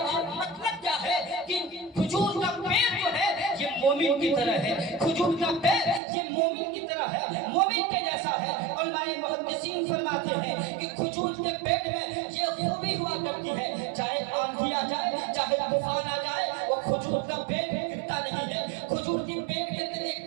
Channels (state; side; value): drops out; left; at 6.0 s